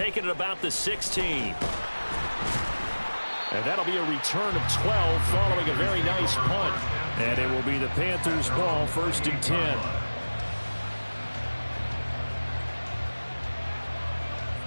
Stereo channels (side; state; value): both; inverted; correlation -1.00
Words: it about the 16. And that'll be a return of 12 following a very nice punt. And it will be the Panthers' ball, 1st and 10.